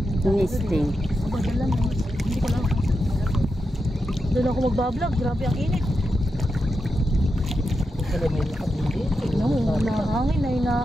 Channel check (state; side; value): normal; both; correlation 0.87